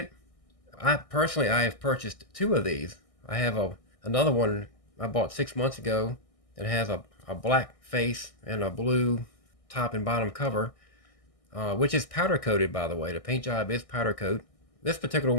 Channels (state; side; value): late; right; 1.6 ms